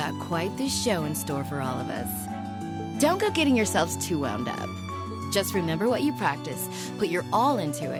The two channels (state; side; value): identical; both; correlation 1.00